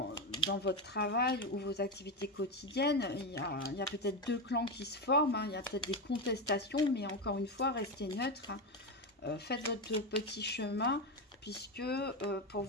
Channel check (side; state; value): both; normal; correlation 0.13